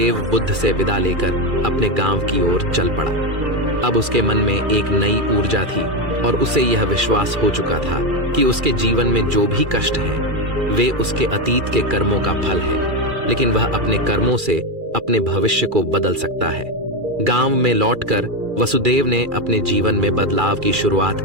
बुद्ध से विदा लेकर अपने गांव की ओर चल पड़ा। अब उसके मन में एक नई ऊर्जा थी और उसे यह विश्वास हो चुका था कि उसके जीवन में जो भी कष्ट हैं वे उसके अतीत के कर्मों का फल है, लेकिन वह अपने कर्मों से अपने भविष्य को बदल सकता है। गांव में लौटकर वसुदेव ने अपने जीवन में बदलाव की शुरुआत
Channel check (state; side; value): late; left; 2.4 ms